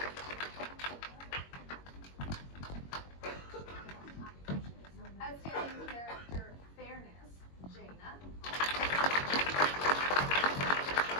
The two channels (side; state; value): right; late; 21 ms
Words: Outstanding character, fairness, Jaina.